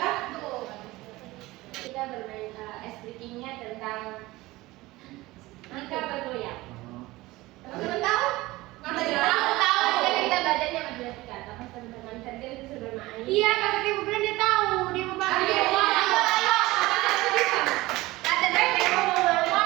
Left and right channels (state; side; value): quieter; left; 19.5 dB